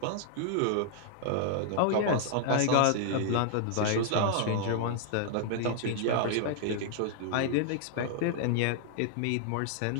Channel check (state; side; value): different; both; correlation -0.01